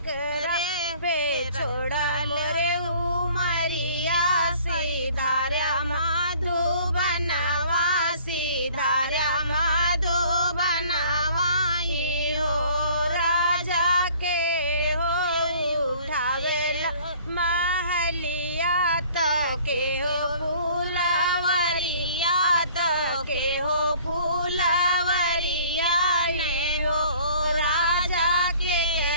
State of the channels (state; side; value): inverted; both; correlation -0.53